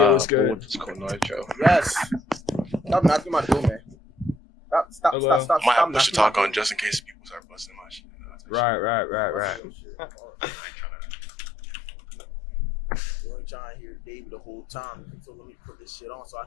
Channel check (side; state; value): right; drops out; at 9.6 s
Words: is good. Yes. Stop knocking my door, man. Stop. I might have to push the talk on just in case people start busting my shit. Right. You ain't trying to hear David the whole time, so let me put this shit on so I